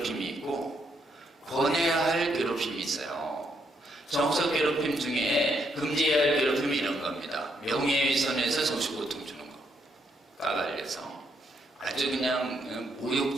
있고 권해야 할 괴롭힘이 있어요. 정신적 괴롭힘 중에 금지해야 할 괴롭힘이 이런 겁니다. 명예훼손에서 정신 고통 주는 거. 까발려서. 아주 그냥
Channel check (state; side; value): normal; both; correlation 0.76